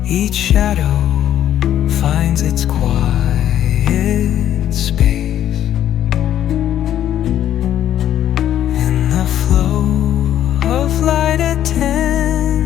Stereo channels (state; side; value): quieter; right; 11.2 dB